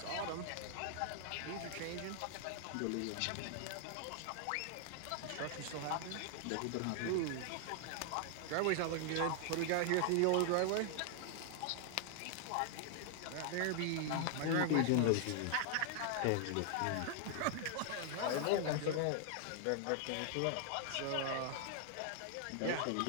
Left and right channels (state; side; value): different; both; correlation 0.00